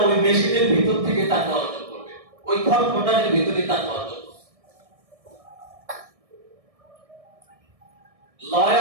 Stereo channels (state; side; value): late; left; 1.6 ms